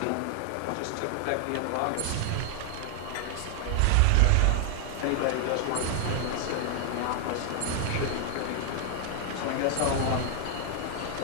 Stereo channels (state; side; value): different; both; correlation 0.00